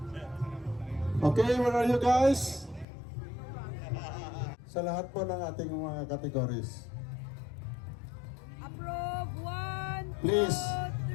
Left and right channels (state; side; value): drops out; right; at 2.9 s